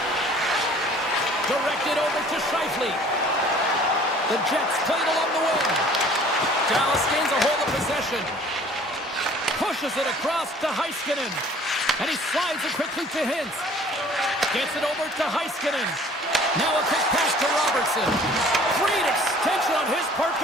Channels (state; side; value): normal; both; correlation 0.52